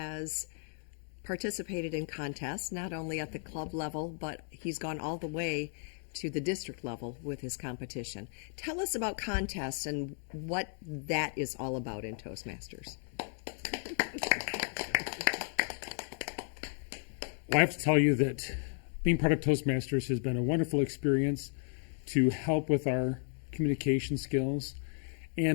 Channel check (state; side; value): silent; right; 55 dB below the other